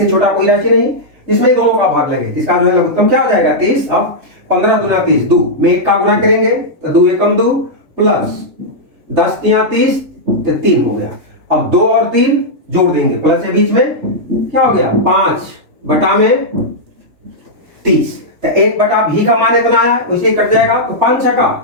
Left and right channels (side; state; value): left; late; 3.3 ms